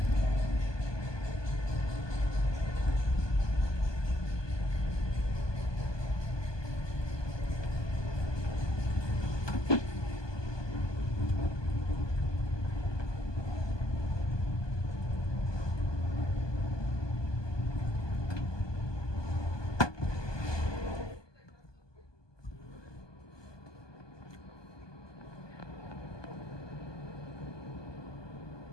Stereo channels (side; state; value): right; late; 1.2 ms